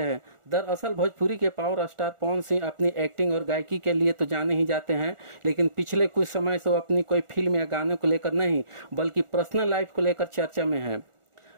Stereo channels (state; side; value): late; left; 1.4 ms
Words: दरअसल भोजपुरी के पावर स्टार पवन सिंह अपनी एक्टिंग और गायकी के लिए तो जाने ही जाते हैं, लेकिन पिछले कुछ समय से वो अपनी कोई फिल्म या गानों को लेकर नहीं बल्कि पर्सनल लाइफ को लेकर चर्चा में है।